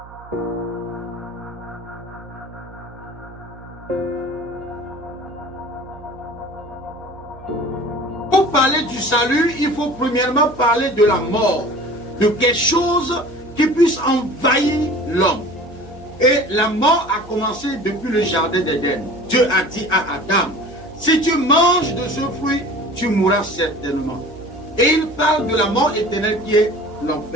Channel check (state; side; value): noise; right; hum, 20 dB below the sound